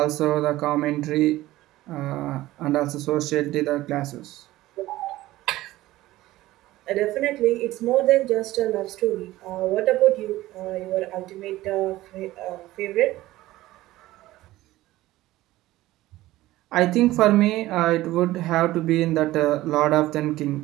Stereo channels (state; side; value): quieter; left; 16.7 dB